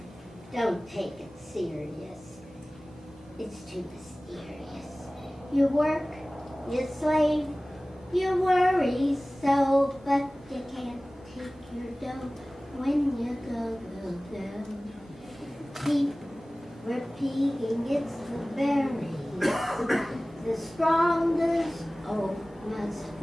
Don't take it serious. It's too mysterious. You work, you slave, you worry so, but you can't take your dough when you go. Keep repeating, it's the berries. The strongest oak must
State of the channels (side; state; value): both; normal; correlation 0.98